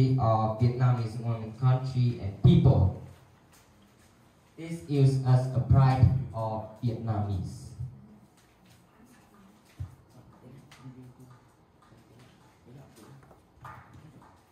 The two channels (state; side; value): identical; both; correlation 1.00